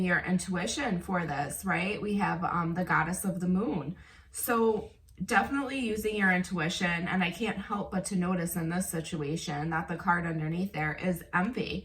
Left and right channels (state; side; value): identical; both; correlation 1.00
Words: your intuition for this, right? We have the goddess of the moon. So definitely using your intuition. And I can't help but to notice in this situation that the card underneath there is